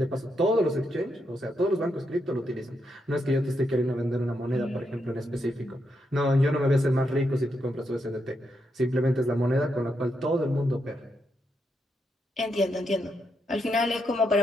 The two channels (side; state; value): both; normal; correlation 0.81